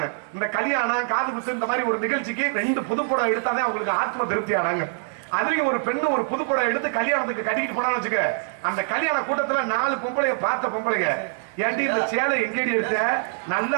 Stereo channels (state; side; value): silent; left; 62 dB below the other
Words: இந்த கல்யாணம் காது குத்து இந்த மாதிரி ஒரு நிகழ்ச்சிக்கு 2 புது புடவை எடுத்தாதான் அவங்களுக்கு ஆத்ம திருப்தி ஆனாங்க. அதுலயும் ஒரு பெண்ணு ஒரு புது புடவை எடுத்து கல்யாணத்துக்கு கட்டிக்கிட்டு போனான்னு வச்சுக்க, அந்த கல்யாண கூட்டத்துல 4 பொம்பளைய பார்த்த பொம்பளைங்க, ஏண்டி இந்த சேலை எங்கேடி எடுத்த, நல்லா